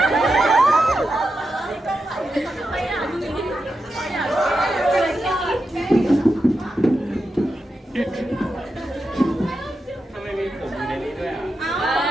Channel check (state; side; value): normal; both; correlation 0.88